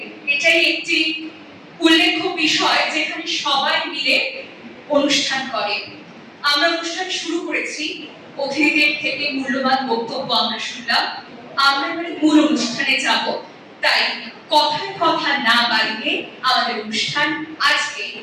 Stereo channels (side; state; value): both; identical; correlation 1.00